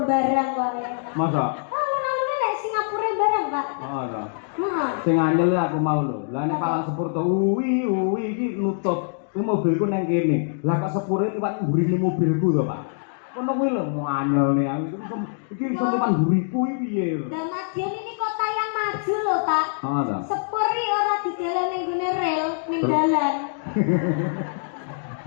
barang kok ya. Masa? Alun-alune nek Singapura barang, Pak. Oh, ora. Heeh. Sing anyel aku mau lho. Lah nek Palang Sepur to uwi iki nutup. Ku mobilku ning kene. Lah kok sepure liwat mburine mobilku to, Pak. Kono kuwi lho mau anyel nih aku. Iki iso liwat mburiku iki piye lho. Dan Madiun ini kota yang maju lho, Pak. Oh, ta. Sepuri ora didelok ning gone rel ning dalan.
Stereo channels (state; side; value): silent; right; digital silence